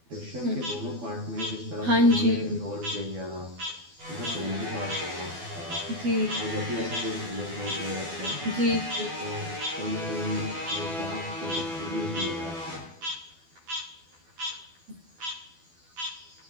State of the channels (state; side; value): late; left; 12 ms